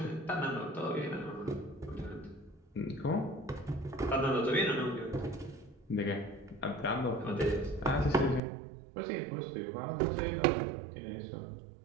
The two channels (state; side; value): drops out; left; at 8.4 s